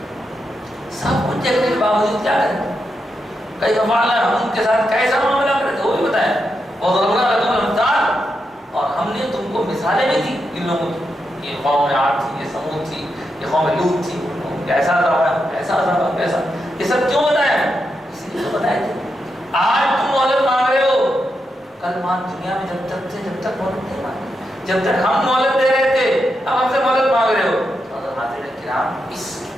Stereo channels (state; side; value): normal; both; correlation 0.85